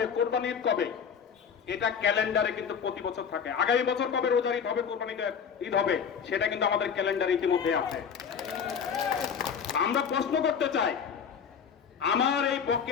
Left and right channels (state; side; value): quieter; right; 7.0 dB